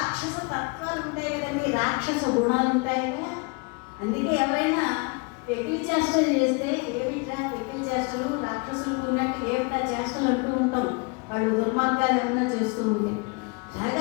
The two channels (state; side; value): quieter; right; 31.2 dB